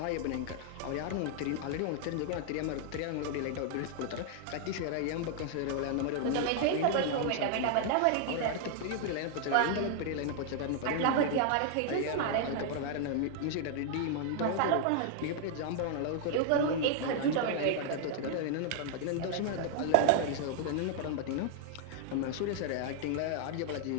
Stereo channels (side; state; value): both; different; correlation 0.00